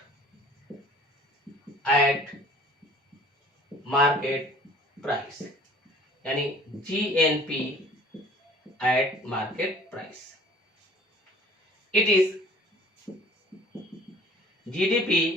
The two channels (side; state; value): both; normal; correlation 0.50